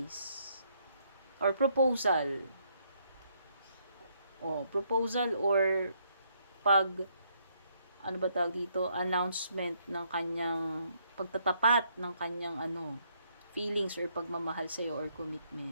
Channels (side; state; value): both; inverted; correlation -0.71